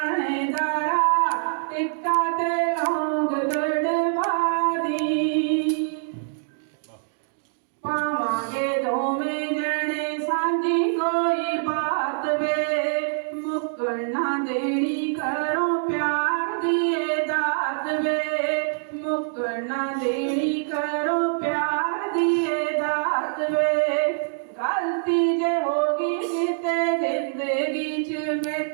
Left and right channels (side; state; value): left; silent; digital silence